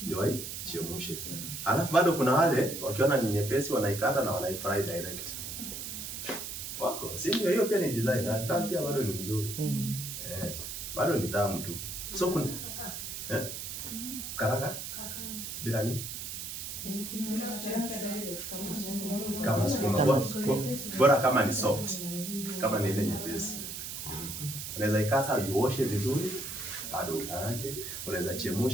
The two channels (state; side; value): noise; right; hiss, 7 dB below the sound